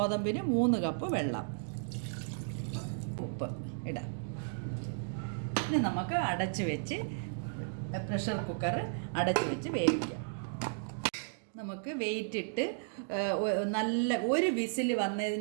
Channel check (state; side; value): silent; left; digital silence